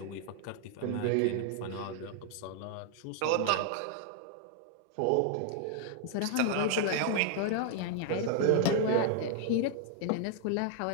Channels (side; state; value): both; different; correlation 0.00